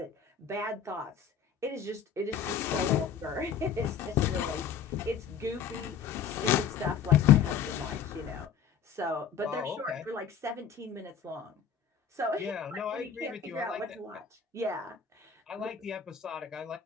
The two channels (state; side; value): quieter; right; 7.3 dB